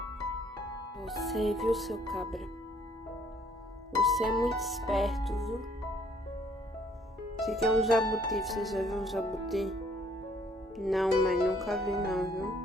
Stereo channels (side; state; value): both; normal; correlation 0.62